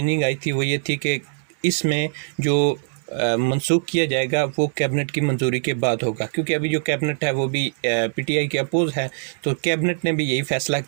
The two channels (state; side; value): silent; left; digital silence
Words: आई थी वो ये थी कि इसमें जो मनसूख किया जाएगा वो कैबिनेट की मंजूरी के बाद होगा, क्योंकि अभी जो कैबिनेट है वो भी पीटीआई के अपोज है। तो कैबिनेट ने भी यही फ़ैसला